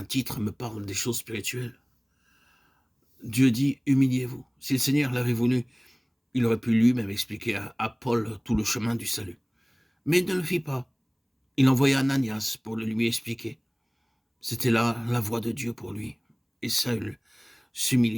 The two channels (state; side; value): identical; both; correlation 1.00